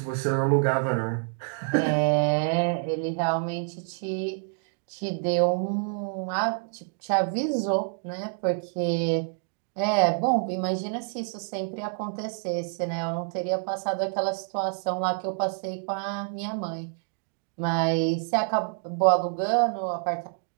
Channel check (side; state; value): left; silent; 57 dB below the other